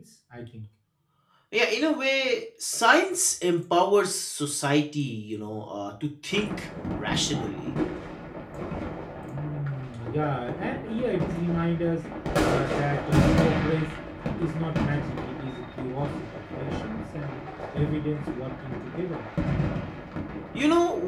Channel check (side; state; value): both; identical; correlation 1.00